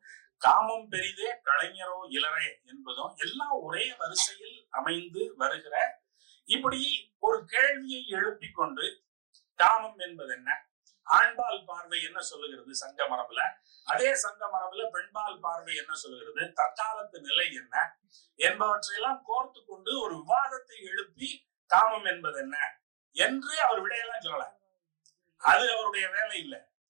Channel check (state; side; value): silent; left; digital silence